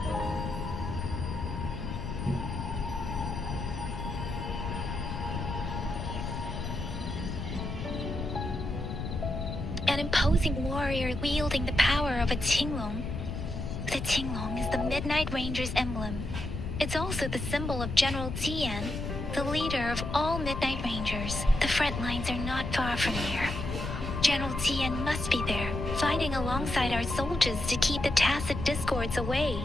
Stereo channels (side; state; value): left; noise; rumble, 5 dB below the sound